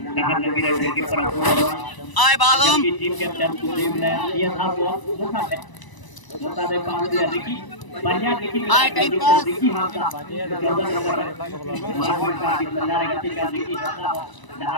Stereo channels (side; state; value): right; late; 1.0 ms